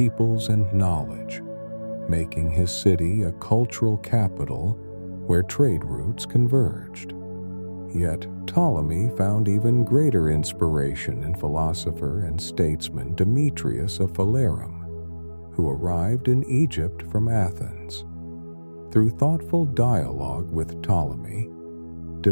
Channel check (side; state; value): both; inverted; correlation -1.00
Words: and knowledge, making his city a cultural capital where trade routes converged. Yet Ptolemy found even greater inspiration in philosopher and statesman Demetrius of Phalerum, who arrived in Egypt from Athens. Through thoughtful dialogue with Ptolemy,